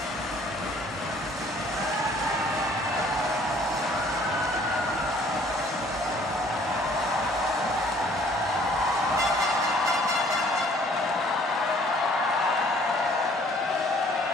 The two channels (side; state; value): both; normal; correlation 0.57